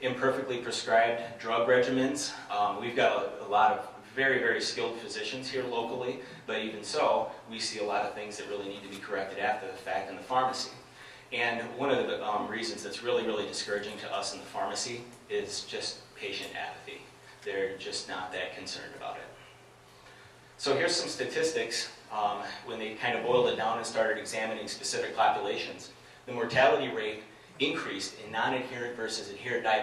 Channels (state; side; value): identical; both; correlation 1.00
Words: Imperfectly prescribed drug regimens. We've got a lot of very, very skilled physicians here locally, but even so, we see a lot of things that really need to be corrected after the fact in the pharmacy. And one of the reasons that's really, really discouraging to us in the pharmacy is just patient apathy. They're just not that concerned about it. So here's some statistics when they kind of boiled it down and started examining specific populations. The mortality rate increased in non-adherent versus adherent